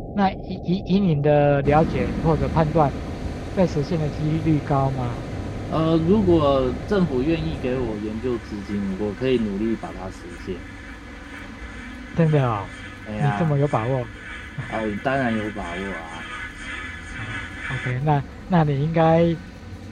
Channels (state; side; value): identical; both; correlation 1.00